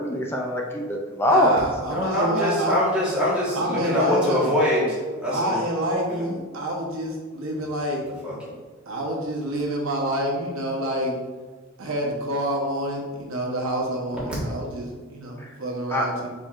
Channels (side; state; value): both; normal; correlation 0.14